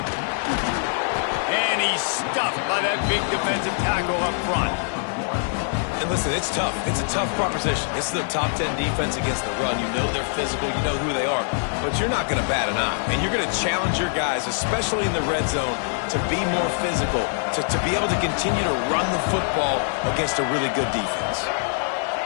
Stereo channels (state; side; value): silent; right; 63 dB below the other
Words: And he's stuffed by that big defensive tackle up front. And listen, it's tough. It's a tough proposition. This is the top 10 defense against the run. You know they're physical. You know who they are. But you're not going to bat an eye. And you're going to challenge your guys, especially in the red zone, to be more physical, to be able to continue to run the football against a really good defense.